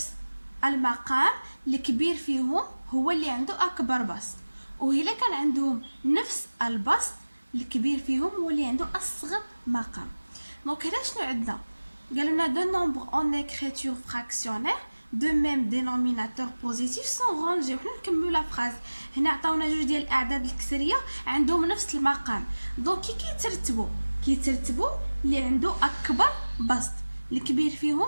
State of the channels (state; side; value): inverted; both; correlation -1.00